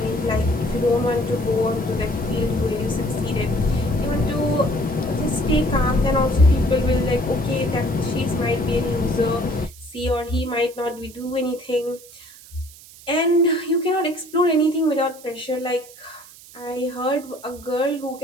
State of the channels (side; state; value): right; noise; hiss, 20 dB below the sound